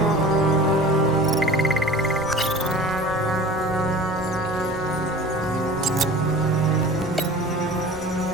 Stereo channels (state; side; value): normal; both; correlation 0.41